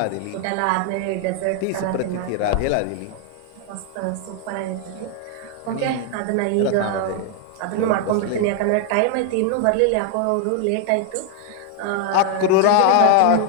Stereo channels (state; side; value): different; both; correlation 0.00